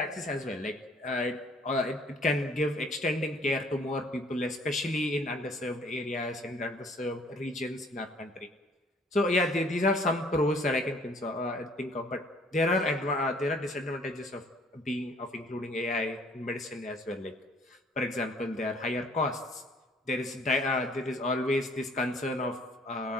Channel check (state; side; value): normal; both; correlation 0.58